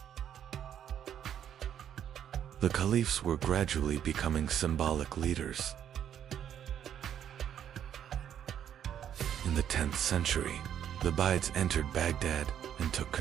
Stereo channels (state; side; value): quieter; left; 9.6 dB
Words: The caliphs were gradually becoming symbolic leaders. In the 10th century, the Ubayyids entered Baghdad and took